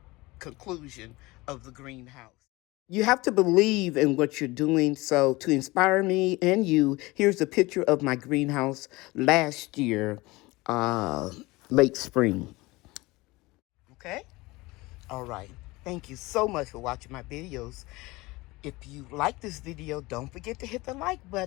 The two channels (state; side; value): quieter; right; 21.7 dB